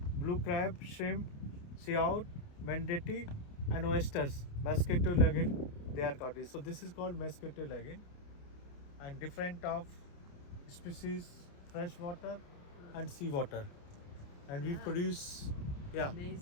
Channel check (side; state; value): right; late; 28 ms